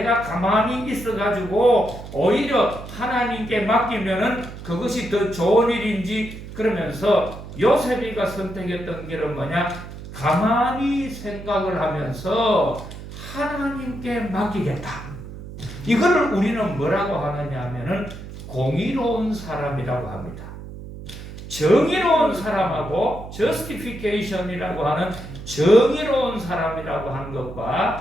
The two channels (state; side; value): noise; right; hum, 12 dB below the sound